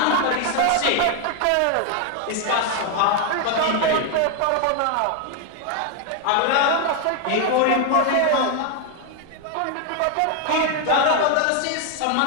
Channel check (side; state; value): both; different; correlation 0.01